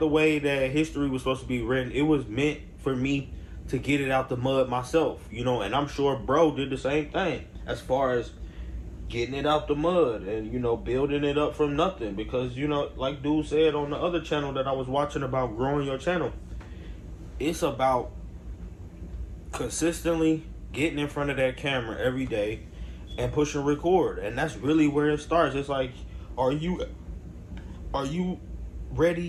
way that history was supposed to be written. It was meant for me to get it out the mud myself, you know, and I'm sure bro did the same thing as far as getting it out the mud and, you know, building it up from nothing. Because, you know, like dude said on the other channel that I was watching about growing your channel, it's about consistently getting in front of that camera every day and pushing record. And that's really where it starts. It's like, are you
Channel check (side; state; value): both; identical; correlation 1.00